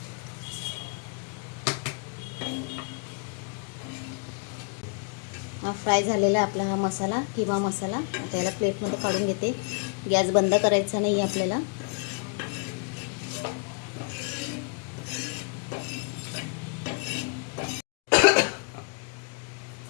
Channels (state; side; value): quieter; right; 38.9 dB